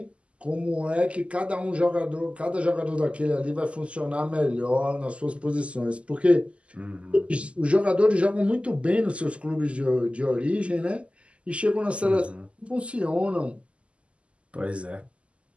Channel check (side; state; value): left; late; 0.057 ms